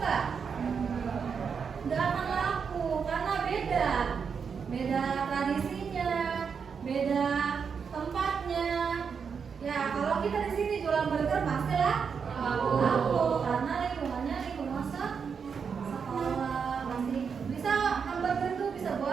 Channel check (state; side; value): quieter; left; 6.3 dB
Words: Nggak akan laku karena beda tradisinya, beda tempatnya. Ya, kalau kita di sini jualan burger pastilah laku karena lingkungannya lingkungan sekolah. Masih bisa, hamburger itu bisa